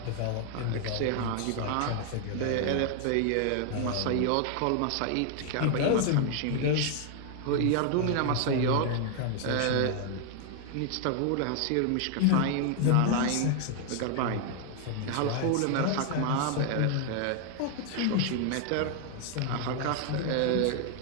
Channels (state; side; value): different; both; correlation 0.00